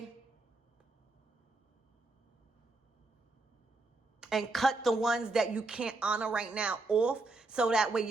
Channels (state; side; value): quieter; left; 3.1 dB